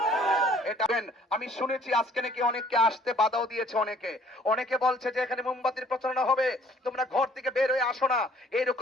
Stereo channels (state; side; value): normal; both; correlation 0.58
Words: এটা আমি শুনেছি আজকে নাকি অনেককে আসতে বাধাও দিয়েছে। অনেকে বলছে যে এখানে মোমবাতির প্রচারণা হবে, তোমরা ঘর থেকে বের হয়ে আসো না।